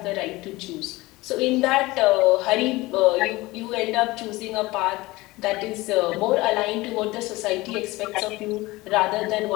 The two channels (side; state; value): right; quieter; 20.4 dB